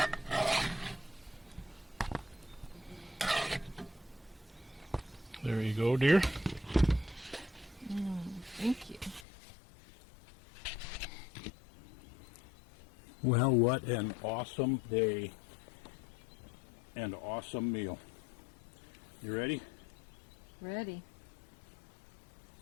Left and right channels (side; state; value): right; drops out; at 9.2 s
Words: There you go, dear. Thank you. Well, what an awesome day and awesome meal. You ready? Ready.